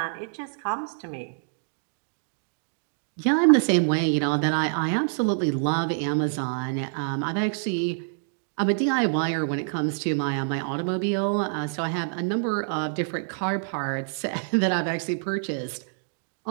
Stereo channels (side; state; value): left; silent; digital silence